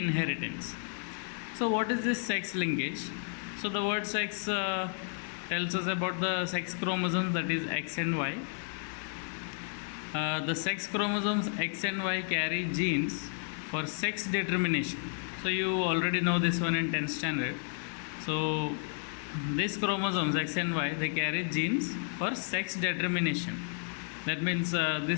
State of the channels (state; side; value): silent; right; 56 dB below the other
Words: So what is this sex linkage? So the word sex tells us about the sex chromosomes, that is X and Y. The sex chromosomes X and Y carry genes for sex determination. So you already know this one in 10th standard. So these chromosomes X and Y, they carry genes for sex determination. That means